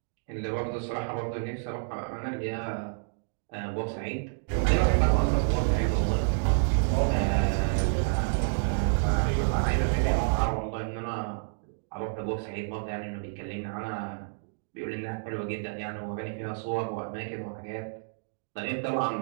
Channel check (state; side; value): silent; left; digital silence